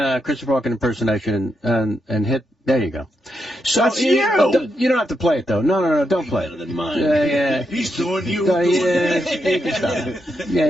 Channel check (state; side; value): normal; both; correlation 0.83